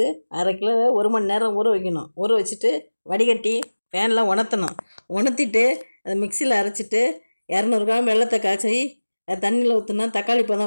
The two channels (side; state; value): both; inverted; correlation -1.00